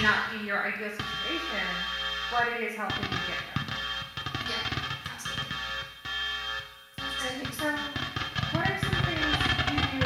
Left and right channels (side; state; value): both; identical; correlation 1.00